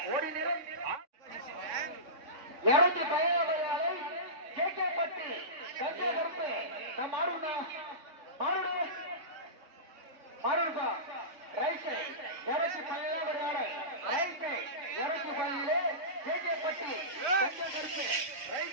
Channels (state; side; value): late; left; 3.6 ms